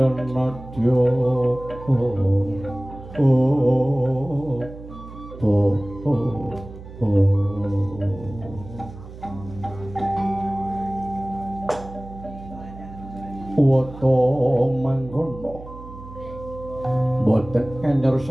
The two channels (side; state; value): right; noise; hum, 15 dB below the sound